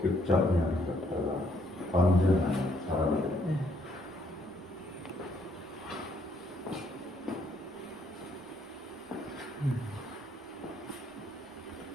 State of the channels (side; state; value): both; normal; correlation 0.69